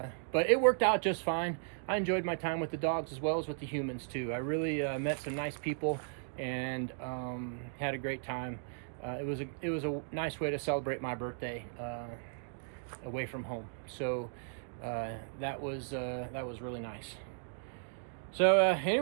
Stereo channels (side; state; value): left; silent; digital silence